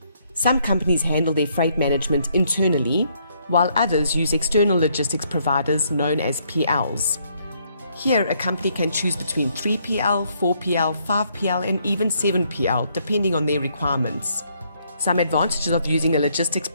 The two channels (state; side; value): inverted; both; correlation -0.70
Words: Some companies handle their freight management internally, while others use external logistics providers known as PLs. Here, a company can choose between 3PL, 4PL, 5PL, and even 7PL, depending on their requirements. Some advantages of using a logistics